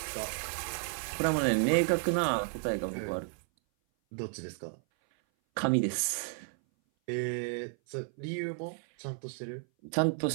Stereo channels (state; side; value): silent; left; 56 dB below the other